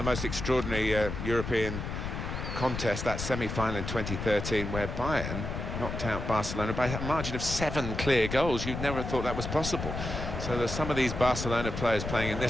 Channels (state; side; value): noise; left; rumble, 5 dB below the sound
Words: most extraordinary European contests, that semi-final in 2013, where Bayern knocked out Barcelona by a margin of 7 clear goals. You'd never have thought that was possible. So there's some of these Barcelona players playing in